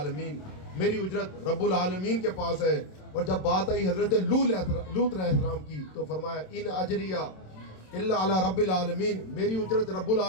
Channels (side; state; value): right; late; 27 ms